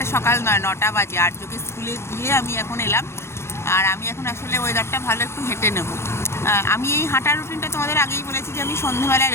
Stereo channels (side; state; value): right; late; 0.13 ms